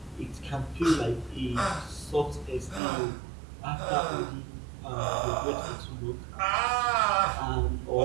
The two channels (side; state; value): left; drops out; at 2.8 s